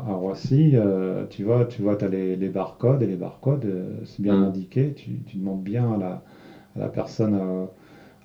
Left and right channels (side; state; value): both; identical; correlation 1.00